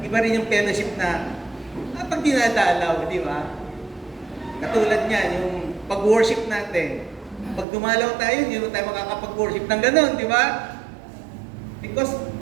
Iba rin yung fellowship na pag dinadalaw, di ba? Katulad niyan, yung pag-worship natin. Pag dumalaw tayo, hindi mo tayo makakapag-worship ng ganun, di ba? Because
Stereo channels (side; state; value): left; drops out; at 7.7 s